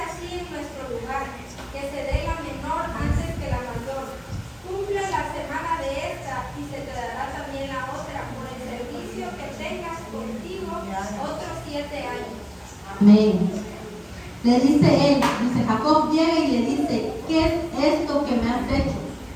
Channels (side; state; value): both; identical; correlation 1.00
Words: en nuestro lugar, que se dé la menor antes que la mayor. Cumple la semana de esta y se te dará también la otra por el servicio que tengas contigo otros 7 años. Amén. Le dice él, dice Jacob llega y le dice, ¿qué es esto que me has hecho?